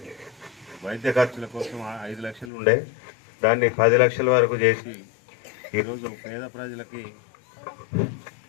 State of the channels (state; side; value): drops out; right; at 2.5 s